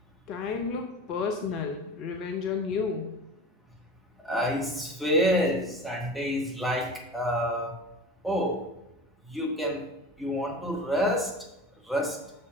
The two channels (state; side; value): normal; both; correlation 0.34